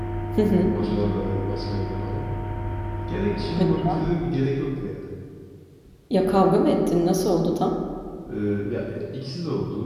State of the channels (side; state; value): both; identical; correlation 1.00